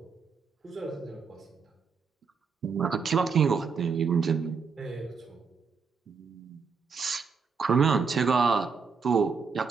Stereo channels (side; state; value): left; quieter; 5.4 dB